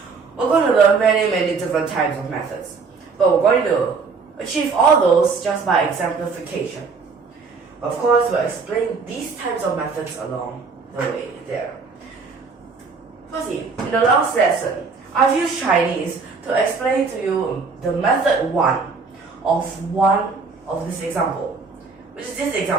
we're going to learn many different types of methods. But we're going to achieve all those just by exemplification. Of course, we'll explain these types of methods along the way there. Firstly, in the last lesson, I've used Chinese to explain to you the method 1 of this example, which is this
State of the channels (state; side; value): quieter; left; 4.7 dB